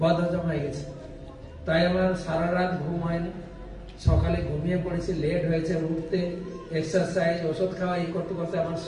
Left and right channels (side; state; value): both; identical; correlation 1.00